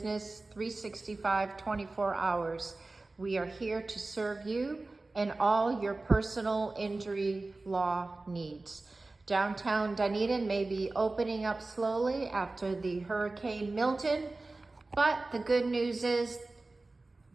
365, 24 hours. We are here to serve you and all your personal injury law needs. Downtown Dunedin may be opening up slowly after the Hurricane Milton, but the good news is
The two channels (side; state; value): left; quieter; 3.2 dB